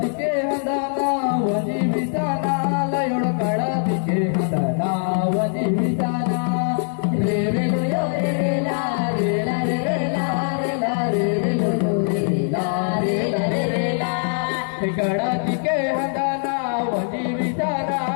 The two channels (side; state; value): right; silent; 59 dB below the other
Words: हंदाना वजी विताना लयोड कळतिके हंदाना वजी विताना रे रे लो यो रे रे ला रे ला रे रे ला रे ला रे रे लो यो रे रे ला रे ला रे रे ला कळतिके हंदाना वजी विताना